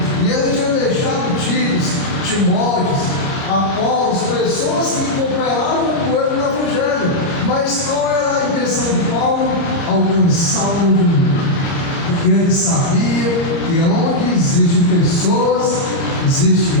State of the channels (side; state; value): right; late; 30 ms